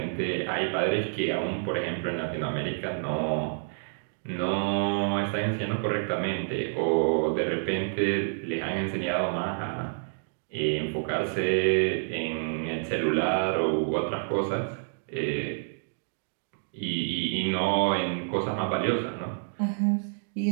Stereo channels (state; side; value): silent; left; digital silence